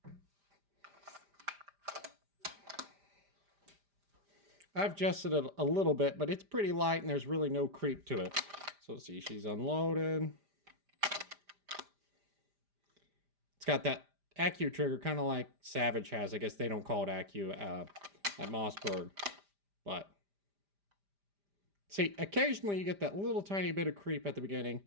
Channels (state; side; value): late; left; 5.0 ms